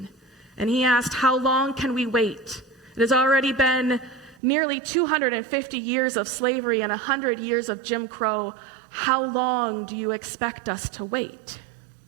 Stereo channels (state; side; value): drops out; left; at 4.4 s